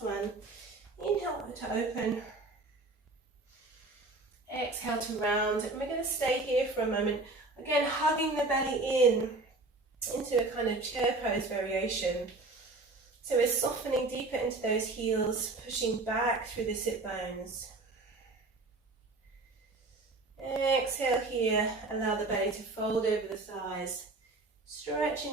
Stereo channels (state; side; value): quieter; left; 3.2 dB